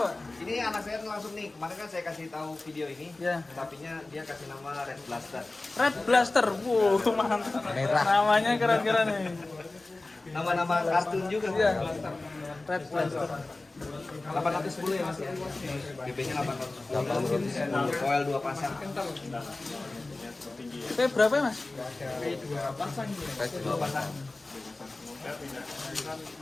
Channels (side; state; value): right; quieter; 3.1 dB